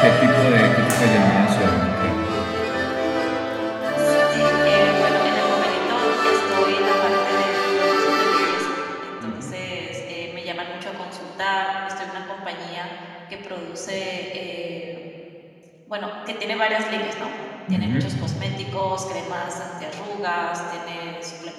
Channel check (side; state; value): both; identical; correlation 1.00